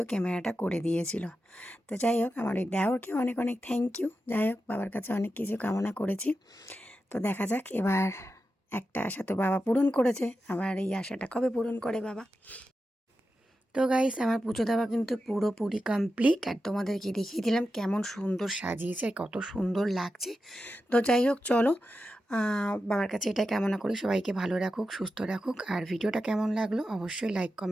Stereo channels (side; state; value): both; normal; correlation 0.90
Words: ক্যামেরাটা করে দিয়েছিল। তো যাই হোক, আমার ওই দেওরকে অনেক অনেক থ্যাংক ইউ। যাই হোক, বাবার কাছে অনেক কিছু কামনা করেছি। তো দেখা যাক, এবার একটা আশা তো বাবা পূরণ করেছে, আবার এই আশাটা কবে পূরণ করে বাবা। তো গাইস, আমার পুজো দেওয়া কিন্তু পুরোপুরি কমপ্লিট, আর তোমাদেরকে দেখিয়ে দিলাম কেমন সুন্দর সাজিয়েছে আর কত সুন্দর লাগছে। তো যাই হোক, চলো বাবার কাছে এটাই কামনা করি সবাইকে ভালো রাখুক, সুস্থ রাখুক। আর ভিডিওটা কেমন লাগলো অবশ্যই লাইক